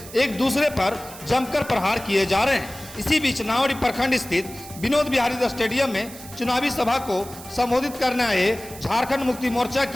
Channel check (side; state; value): right; noise; hiss, 16 dB below the sound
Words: एक दूसरे पर जमकर प्रहार किए जा रहे हैं। इसी बीच नावड़ी प्रखंड स्थित विनोद बिहारी स्टेडियम में चुनावी सभा को संबोधित करने आए झारखंड मुक्ति मोर्चा